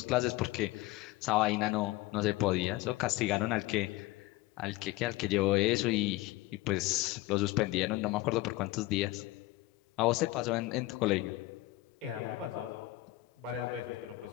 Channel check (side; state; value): right; quieter; 18.3 dB